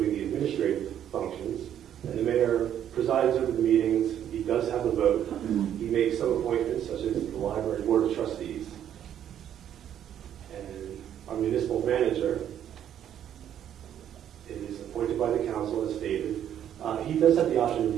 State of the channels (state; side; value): quieter; left; 10.2 dB